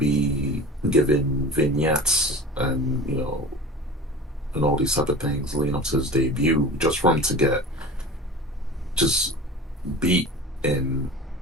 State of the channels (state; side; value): normal; both; correlation 0.36